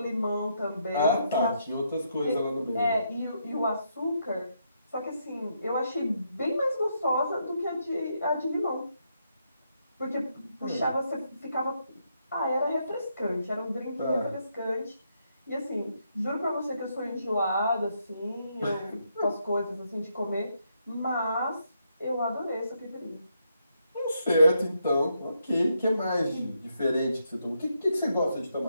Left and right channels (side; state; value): both; inverted; correlation -0.78